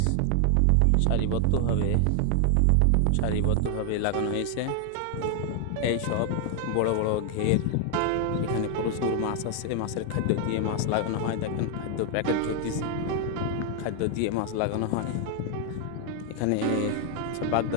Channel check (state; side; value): different; both; correlation 0.00